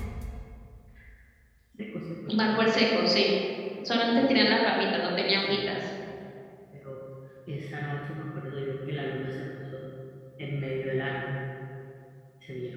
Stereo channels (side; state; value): both; identical; correlation 1.00